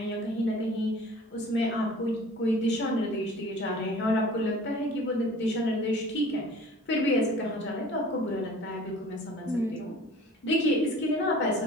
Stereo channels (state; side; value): normal; both; correlation 0.46